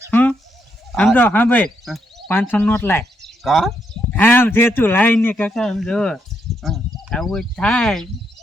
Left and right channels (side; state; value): both; normal; correlation 0.78